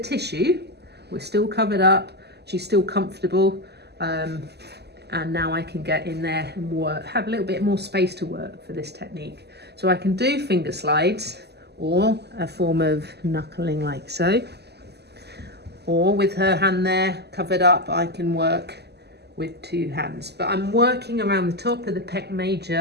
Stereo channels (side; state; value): left; late; 0.48 ms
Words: we're still covered up. She's still comfortable. And now I can get in there and work, have a little bit more space to work for this technique. So I can do finger slides or a form of knuckling like so. Or with her hand there covered up, I can work with 2 hands. But I'm working around the top of the pec